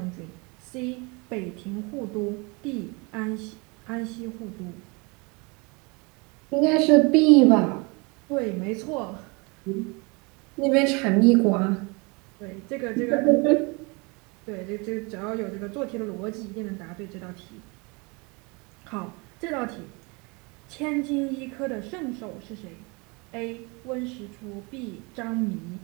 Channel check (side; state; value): left; quieter; 29.0 dB